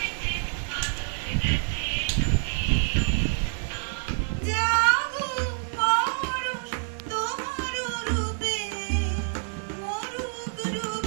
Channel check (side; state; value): left; silent; digital silence